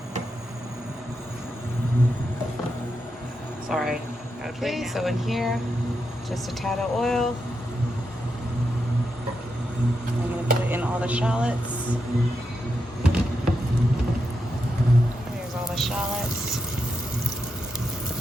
Sorry. Okay, so in here, just a tad of oil. I'm going to put in all the shallots. Here's all the shallots.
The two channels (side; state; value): both; normal; correlation 0.85